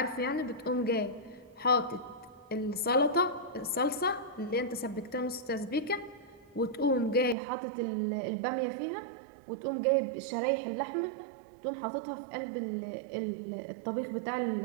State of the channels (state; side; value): drops out; left; at 7.4 s